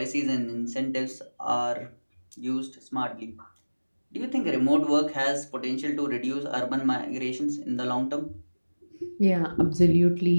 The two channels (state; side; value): inverted; both; correlation -1.00